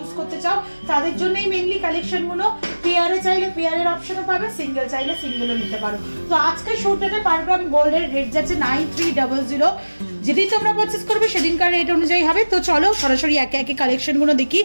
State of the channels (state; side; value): inverted; both; correlation -1.00